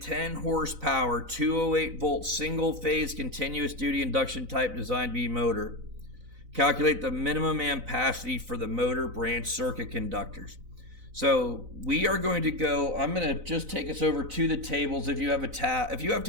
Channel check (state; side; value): late; left; 4.0 ms